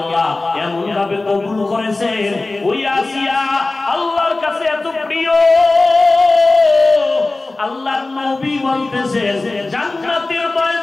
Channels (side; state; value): right; quieter; 3.2 dB